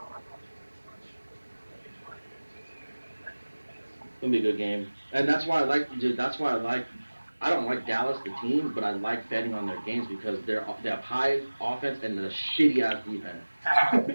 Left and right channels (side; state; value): both; inverted; correlation -1.00